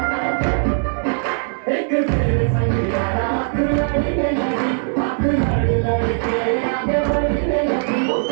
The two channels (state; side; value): silent; left; 61 dB below the other